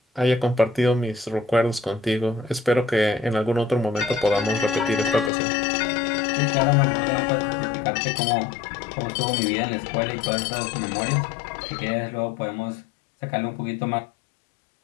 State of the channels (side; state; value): right; drops out; at 5.3 s